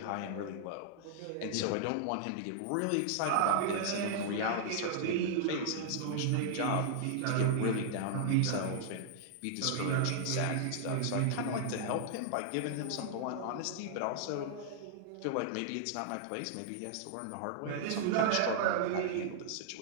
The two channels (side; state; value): both; different; correlation -0.01